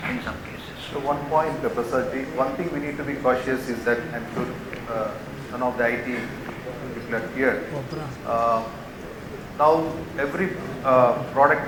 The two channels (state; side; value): identical; both; correlation 1.00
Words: in some cases. So one point, Prasad, one thing we need to be cautious is that I'm sure none of the IT people are here. Now every product